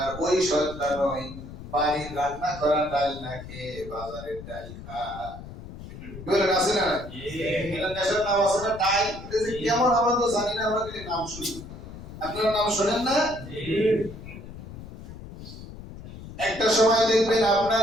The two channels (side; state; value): left; noise; rumble, 13 dB below the sound